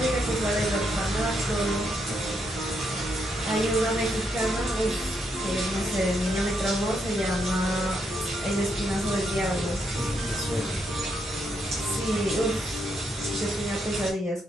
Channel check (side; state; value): both; normal; correlation 0.78